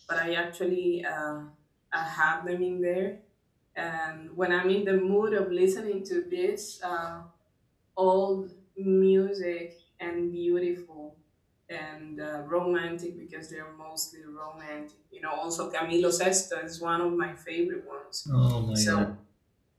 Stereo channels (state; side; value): identical; both; correlation 1.00